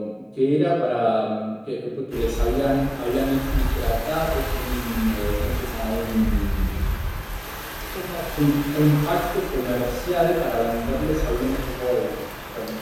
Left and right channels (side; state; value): both; identical; correlation 1.00